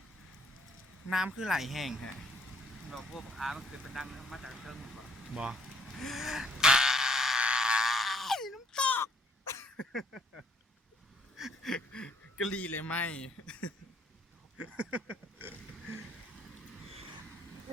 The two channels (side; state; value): both; normal; correlation 0.66